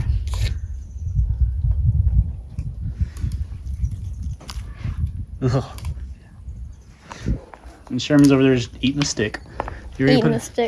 Ugh. And Sherman's over there just eating a stick. You ready, Eating a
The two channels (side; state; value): both; identical; correlation 1.00